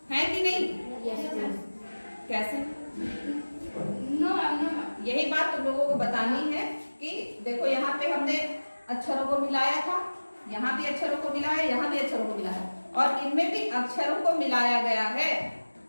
है कि नहीं? कैसे? यही बात तुम लोगों को बतानी है कि देखो यहाँ पे हमने अक्षरों को मिलाया था, यहाँ भी अक्षरों को मिलाया, यहाँ भी अक्षरों को मिलाया, और इनमें भी अक्षरों को मिलाया गया है।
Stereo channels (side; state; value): both; inverted; correlation -1.00